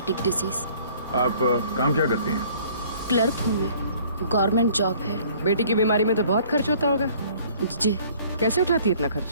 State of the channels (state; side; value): inverted; both; correlation -0.55